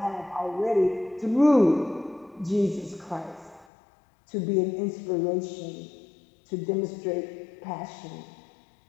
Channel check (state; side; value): drops out; right; at 3.7 s